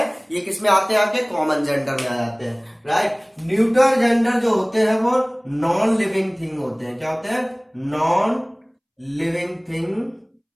ये किस में आते हैं, आपके कॉमन जेंडर में आ जाते हैं। राइट, न्यूट्रल जेंडर जो होते हैं वो नॉन लिविंग थिंग होते हैं। क्या होते हैं, नॉन लिविंग थिंग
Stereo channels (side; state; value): both; identical; correlation 1.00